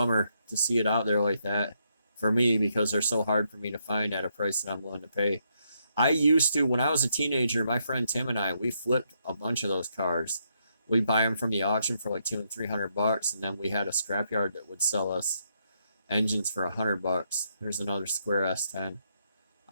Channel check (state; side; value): inverted; both; correlation -0.76